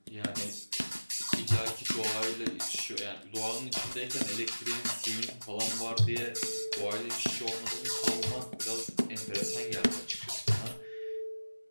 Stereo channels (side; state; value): both; inverted; correlation -1.00